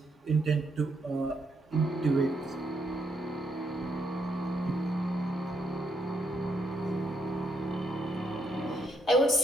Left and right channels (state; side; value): normal; both; correlation 0.77